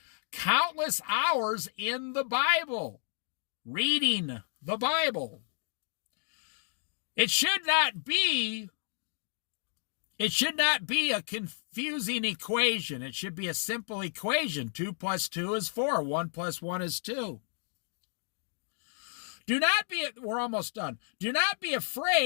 countless hours in the Bible, reading the Bible. It should not be a confusing equation. It should be a simple equation. 2 + 2 is 4. 1 + 1 is 2. We're almost done. Do not be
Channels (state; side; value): silent; right; 57 dB below the other